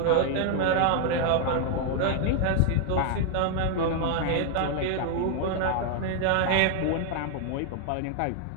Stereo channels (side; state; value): both; different; correlation 0.00